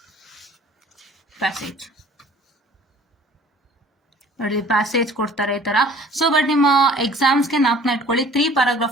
ಪ್ಯಾಸೇಜ್ ನೋಡಿ, ಪ್ಯಾಸೇಜ್ ಕೊಡ್ತಾರೆ ಈ ತರ. ಸೊ ಬಟ್ ನಿಮ್ಮ ಎಕ್ಸಾಮ್ಸ್ಗೆ ನಾಲ್ಕನ್ನ ಇಟ್ಕೊಳ್ಳಿ, 3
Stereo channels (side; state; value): both; normal; correlation 0.50